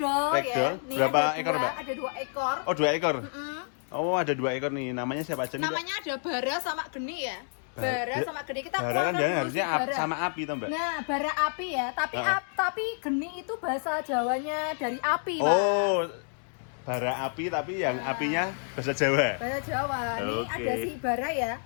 ya. Ragdoll. Nih, Berapa ada ekor, Mbak? Ada 2 ekor. Oh, 2 ekor. Oh, ada 2 ekor nih. Namanya siapa aja nih, Mbak? Namanya ada Bara sama Geni ya. Bara sama Geni, kita Bara kan keluarkan jangan dulu harusnya si Bara. sama api toh Mbak? Nah, bara api ya, tapi Geni itu bahasa Jawanya dari api, Mas. Oh, bara api tapi yang apinya bahasa Jawa. Bahasa Jawa. Nih Oke. ada si Bara ya.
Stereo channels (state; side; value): silent; right; 59 dB below the other